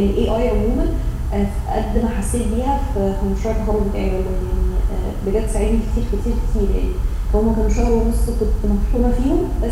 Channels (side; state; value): both; identical; correlation 1.00